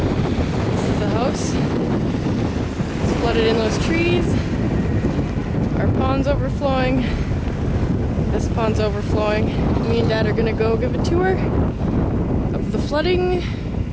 is the house. It's flooded in those trees. Our pond's overflowing. This pond's overflowing. Me and Dad are gonna go give a tour of the flooding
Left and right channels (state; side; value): identical; both; correlation 1.00